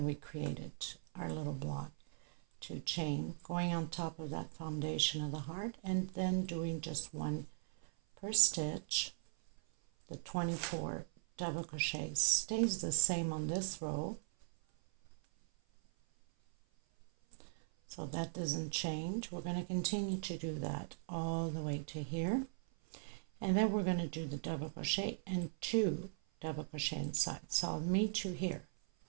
we created our little block. 2 chain, going on top of that foundation of the heart, and then doing just 1 per stitch. The 24 double crochets stays the same on this row, so that doesn't change. We're going to continue to do that all the way to here, and then we're going to do the double crochet and 2 double crochet inside. So I'll meet you here,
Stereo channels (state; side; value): silent; left; 51 dB below the other